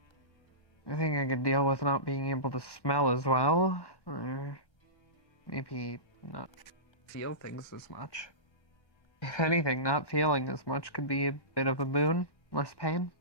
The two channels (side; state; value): right; late; 1.1 ms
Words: I think I could deal with not being able to smell as well, or maybe not feel things as much. If anything, not feeling as much could be a bit of a boon. Less pain.